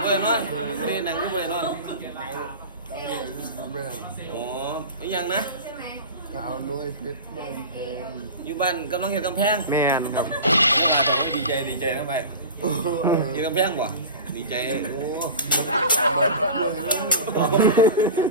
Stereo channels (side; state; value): both; inverted; correlation -0.31